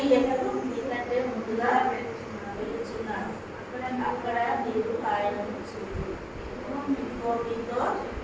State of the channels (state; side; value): identical; both; correlation 1.00